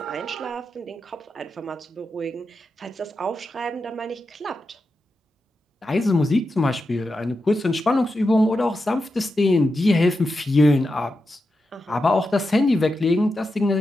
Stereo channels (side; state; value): both; normal; correlation 0.89